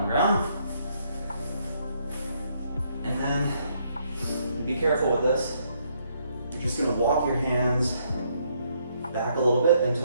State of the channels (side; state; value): both; inverted; correlation -0.71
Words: the ground. And then be careful with this. You're just going to walk your hands back a little bit